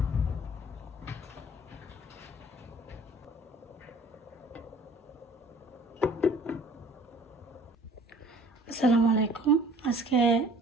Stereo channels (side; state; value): both; normal; correlation 0.51